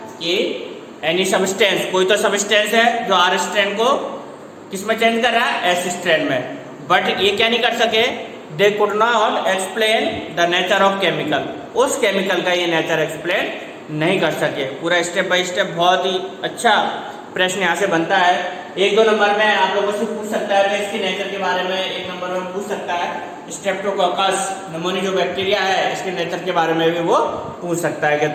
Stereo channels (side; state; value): both; identical; correlation 1.00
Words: कि एनी सबस्टेंस, कोई तो सबस्टेंस है जो R स्ट्रैंड को किस में चेंज कर रहा है, S स्ट्रैंड में, बट ये क्या नहीं कर सके, they could not explain the nature of chemical, उस केमिकल का ये नेचर एक्सप्लेन नहीं कर सके। पूरा स्टेप बाय स्टेप बहुत ही अच्छा प्रश्न यहाँ से बनता है। 1-2 नंबर में आप लोगों से पूछ सकता है, इसके नेचर के बारे में 1 नंबर में पूछ सकता है। स्ट्रेप्टोकोकस निमोनिया जो बैक्टीरिया है, इसके नेचर के बारे में भी वो पूछ सकता है, कि